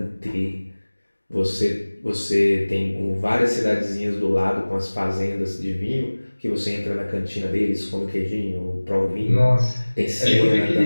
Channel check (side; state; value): both; inverted; correlation -1.00